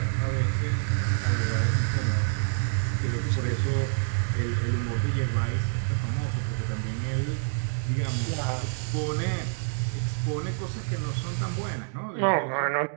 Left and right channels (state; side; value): silent; left; digital silence